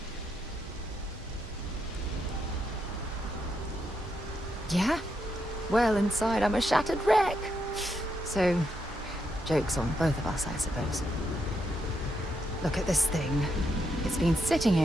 Yeah? Well, inside I'm a shattered wreck. So, joke's on both of us, I suppose. Look at this thing. It's been sitting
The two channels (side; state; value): both; normal; correlation 0.81